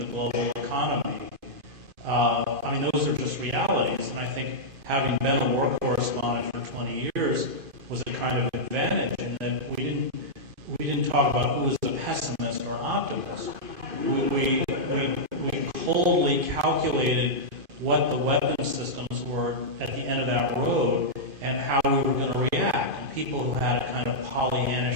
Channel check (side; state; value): left; late; 2.5 ms